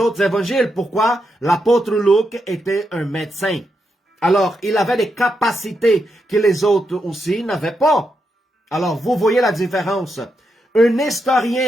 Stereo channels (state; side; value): normal; both; correlation 0.83